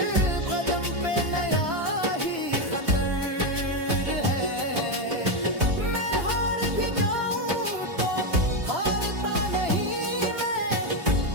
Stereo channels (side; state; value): left; late; 3.0 ms